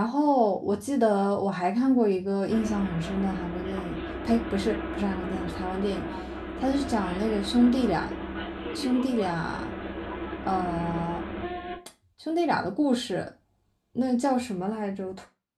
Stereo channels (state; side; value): identical; both; correlation 1.00